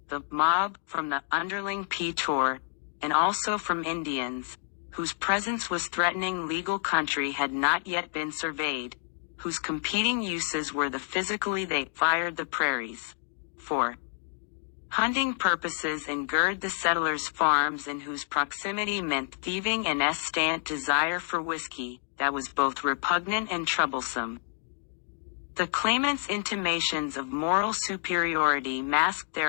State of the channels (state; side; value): silent; right; 59 dB below the other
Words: the mob from the underling P-Tour, and also from Indians, whose presence was threatening legal country had not yet been surveyed, whose competing uses were the physically they fired the prairies. 4. Hunting purposes and gird the settlers' farms and whose proximity meant thieving and estant desire for whiskey, that was both repugnant and troublesome. The claimants' intimations of moral superiority masked